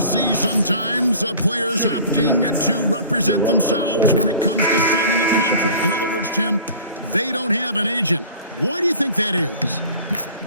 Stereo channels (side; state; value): both; inverted; correlation -0.44